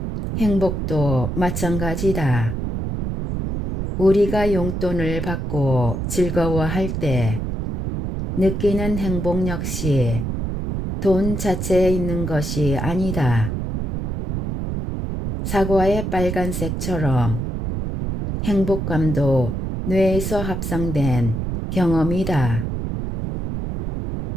행복도 마찬가지다. 우리가 용돈을 받고 즐거워할 때 느끼는 행복 역시 돈 자체에 있는 것이 아니다. 사과의 빨간색처럼 행복감도 뇌에서 합성된 경험이다.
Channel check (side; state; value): right; noise; rumble, 3 dB below the sound